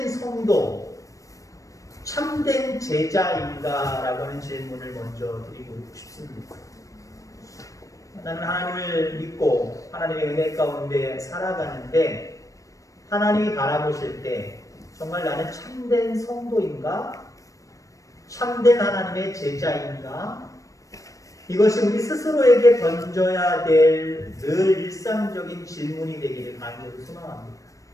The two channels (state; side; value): late; right; 0.16 ms